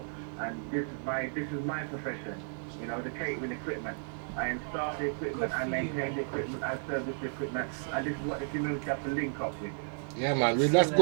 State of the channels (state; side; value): silent; left; 56 dB below the other